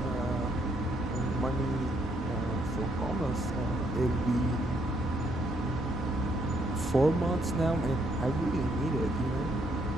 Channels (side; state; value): both; normal; correlation 0.72